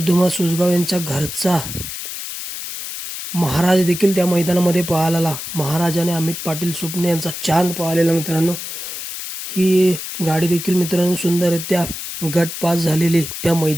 धुमा सोजगाव यांच्या घरचा महाराज देखील त्या मैदानामध्ये पळाला. महाराज आणि अमित पाटील सुपणे यांचा चांद पळालेला मित्रांनो. ही गाडी देखील मित्रांनो सुंदररित्या गट पास झालेली त्या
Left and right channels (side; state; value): left; noise; hiss, 8 dB below the sound